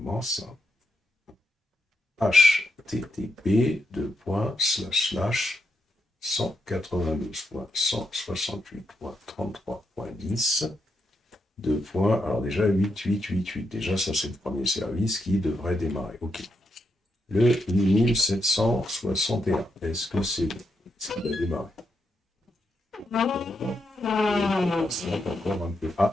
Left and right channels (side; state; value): both; normal; correlation 0.82